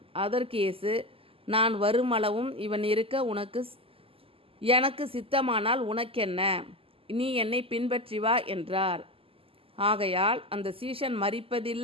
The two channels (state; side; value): late; left; 0.27 ms